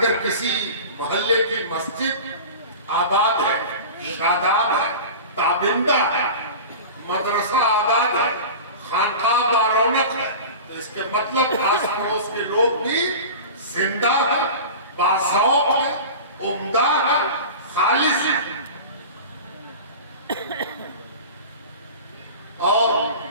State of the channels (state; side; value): inverted; both; correlation -0.33